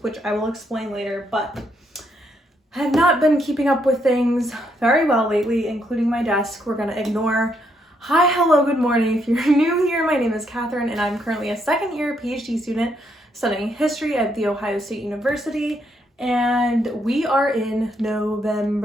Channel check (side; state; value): both; normal; correlation 0.75